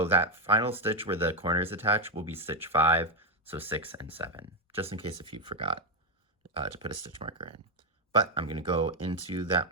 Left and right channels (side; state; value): both; normal; correlation 0.05